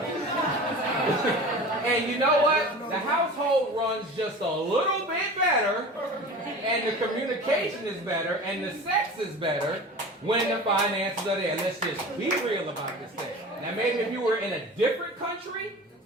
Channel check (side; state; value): both; normal; correlation 0.36